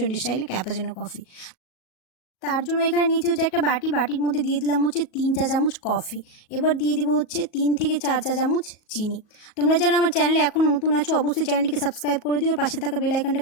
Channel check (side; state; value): right; late; 38 ms